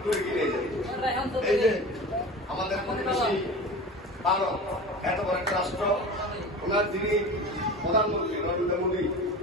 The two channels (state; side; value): normal; both; correlation 0.34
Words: দূরে গিয়ে যায়। এই যে আমাদের প্রতিবেশী ভারত, এত বড় একটা রাষ্ট্র, ওনার যিনি প্রধানমন্ত্রী নরেন্দ্র মোদী,